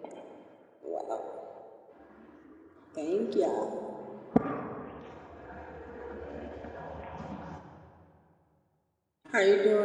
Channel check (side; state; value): both; identical; correlation 1.00